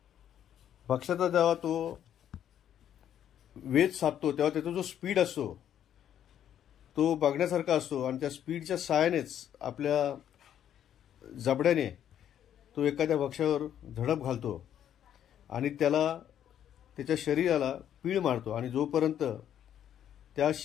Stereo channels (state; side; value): quieter; right; 10.1 dB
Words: भक्ष्याचा जेव्हा तो वेध साधतो तेव्हा त्याचा जो स्पीड असतो तो बघण्यासारखा असतो आणि त्या स्पीडच्या सहाय्यानेच आपल्या जबड्याने तो एखाद्या भक्ष्यावर झडप घालतो आणि त्याला त्याच्या शरीराला पीळ मारतो आणि जोपर्यंत त्या